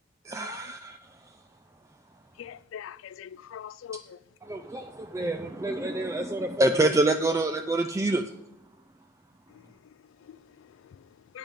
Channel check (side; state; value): both; normal; correlation 0.60